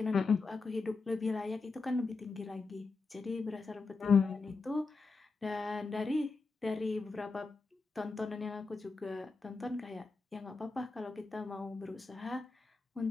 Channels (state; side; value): quieter; right; 4.1 dB